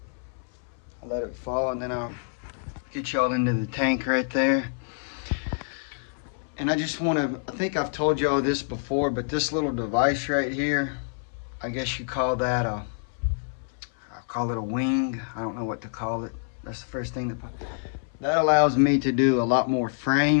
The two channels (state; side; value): silent; right; 60 dB below the other